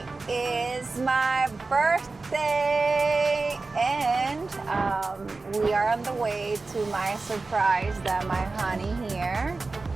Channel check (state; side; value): quieter; left; 3.7 dB